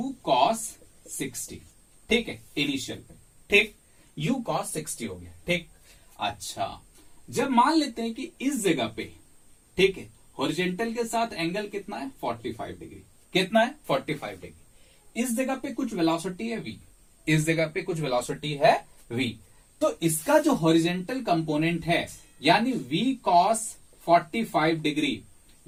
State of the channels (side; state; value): both; identical; correlation 1.00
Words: cos 60, ठीक है, इनिशियल पे, ठीक। u cos 60 हो गया, ठीक। अच्छा, जब मान लेते हैं कि इस जगह पे, ठीक है, हॉरिजॉन्टल के साथ एंगल कितना है? 45 डिग्री। कितना है? 45 डिग्री। इस जगह पे कुछ वेलोसिटी है v, इस जगह पे कुछ वेलोसिटी है v, तो इसका जो हॉरिजॉन्टल कंपोनेंट है, यानी v cos 45 degree,